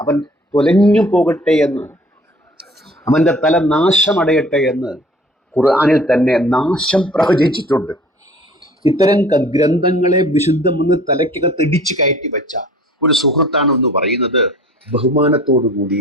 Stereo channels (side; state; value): both; normal; correlation 0.49